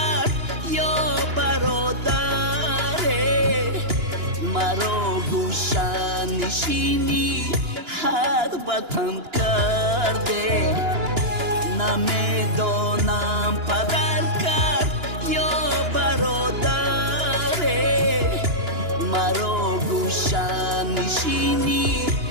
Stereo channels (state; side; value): late; left; 2.9 ms